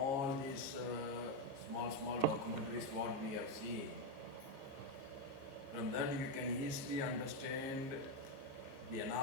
these small documentaries what we have seen, from that you can easily understand the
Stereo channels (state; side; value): late; left; 15 ms